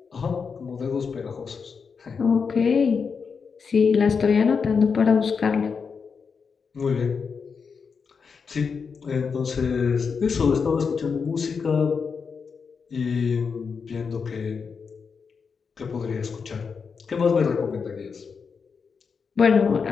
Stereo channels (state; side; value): quieter; right; 5.7 dB